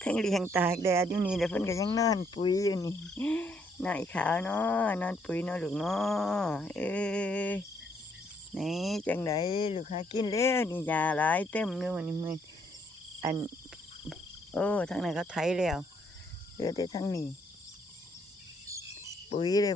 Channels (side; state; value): both; normal; correlation 0.70